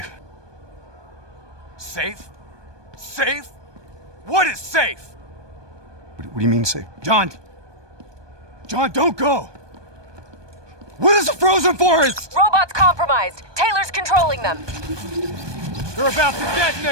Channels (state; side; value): late; left; 1.2 ms